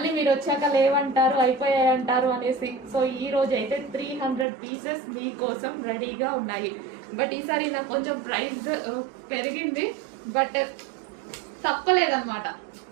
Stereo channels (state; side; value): drops out; left; at 4.5 s